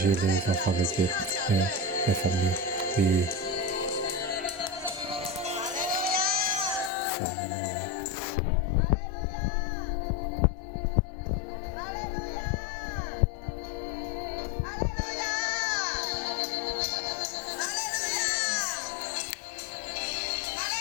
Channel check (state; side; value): drops out; right; at 6.9 s